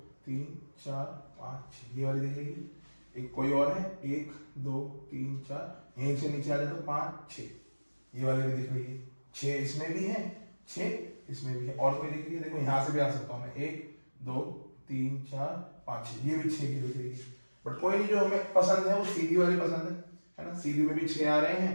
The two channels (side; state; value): both; inverted; correlation -1.00